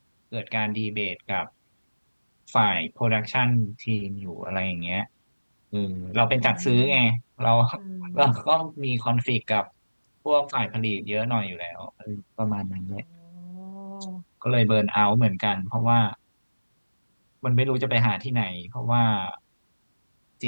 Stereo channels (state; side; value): inverted; both; correlation -1.00